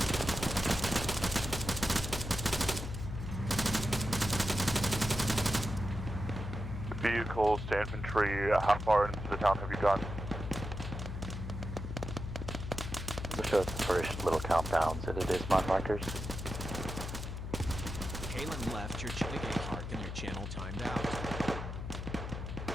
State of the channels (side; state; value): left; noise; hum, 6 dB below the sound